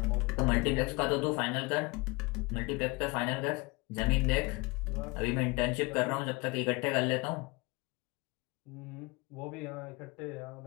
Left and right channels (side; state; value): right; quieter; 26.1 dB